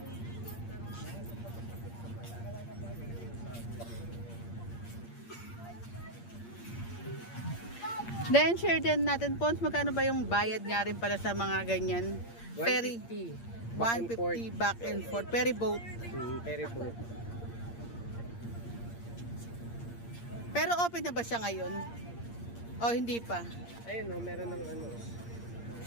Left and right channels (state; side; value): late; right; 8.6 ms